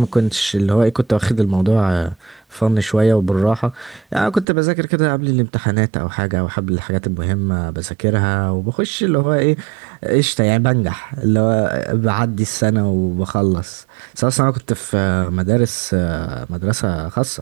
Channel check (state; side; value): drops out; left; at 4.5 s